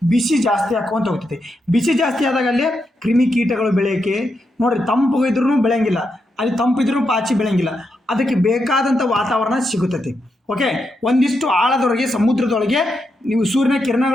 ಬಿಸಿ ಜಾಸ್ತಿ ಹಾಕೊಂತ ಹೋಗ್ತೈತಿ. ಬಿಸಿ ಜಾಸ್ತಿ ಆದಾಗ ಅಲ್ಲಿ ಕ್ರಿಮಿಕೀಟಗಳು ಬೆಳೆಯೋಕ್ಕೆ, ನೋಡ್ರಿ ತಂಪು ಇದ್ರೂ ಬೆಳೆಯಂಗಿಲ್ಲ, ಅಲ್ಲಿ ತಂಪಿದ್ರೂ ಪಾಚಿ ಬೆಳೆಯಂಗಿಲ್ಲ. ಅದಕ್ಕೆ ಬೇಕಾದಂಥ ವಾತಾವರಣ ಸಿಗುತ್ತೈತಿ. ಓಕೆ, ಒಂದಿಷ್ಟು ಆಳದೊಳಗೆ ಸಮುದ್ರದೊಳಗೆ ನೀವು ಸೂರ್ಯನ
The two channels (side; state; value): both; normal; correlation 0.84